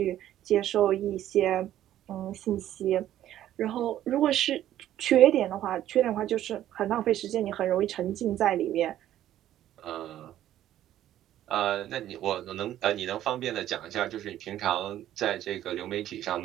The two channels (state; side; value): quieter; left; 12.4 dB